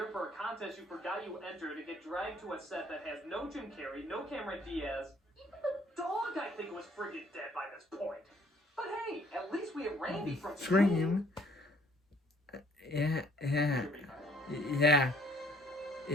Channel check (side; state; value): both; normal; correlation 0.61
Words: for a contest you forgot you entered to get dragged to a set that has no Jim Carrey, no Cameron Diaz. Even the dog, I think, was friggin' dead by this point. But hey, at least we have Randy from Scream. Yeah.